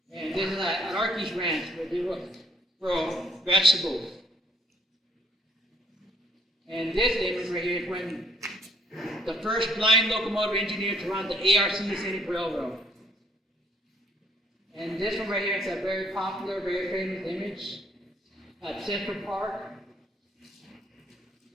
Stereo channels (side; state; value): both; normal; correlation 0.65